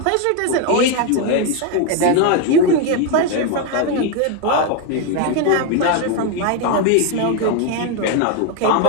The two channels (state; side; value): different; both; correlation 0.02